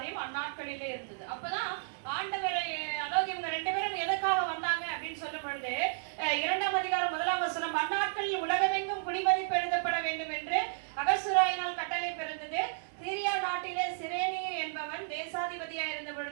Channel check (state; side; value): silent; left; digital silence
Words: அந்நாட்களிலே இருந்தது. அப்பதான் ஆண்டவரை, அதாவது இவங்க 2 பேரும் எதற்காக வந்தாங்க அப்படின்னு சொல்லும் பொழுது 2ஆம் அதிகாரம் 1ஆம் வசனம், அந்நாட்களில் உலகமெங்கும் குடிமதிப்பு எழுதப்பட வேண்டும் என்று அகசுராயினால் கட்டளை பிறந்தது. சீரியா நாட்டிலே சிரேனி என்பவன் தேசாதிபதியா இருந்த